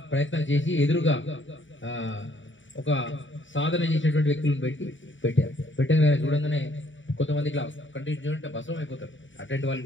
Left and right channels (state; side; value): late; right; 0.55 ms